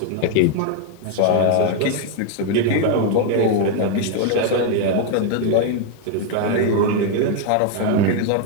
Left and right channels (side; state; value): both; different; correlation 0.00